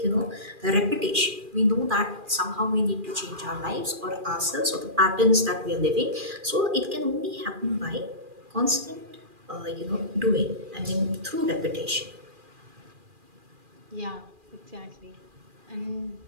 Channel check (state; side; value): late; left; 2.4 ms